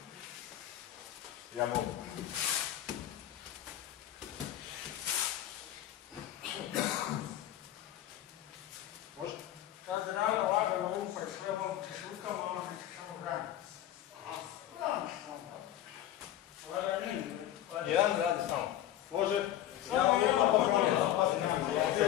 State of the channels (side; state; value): right; quieter; 12.3 dB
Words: Ja mogu. Laganin. Jedan radi samo. Može? Ja vam lupa poželim.